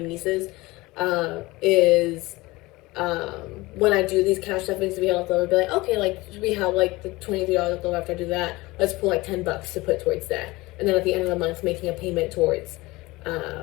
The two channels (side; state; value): right; quieter; 21.2 dB